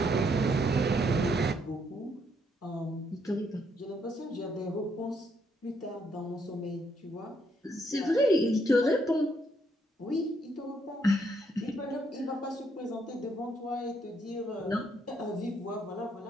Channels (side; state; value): both; normal; correlation 0.73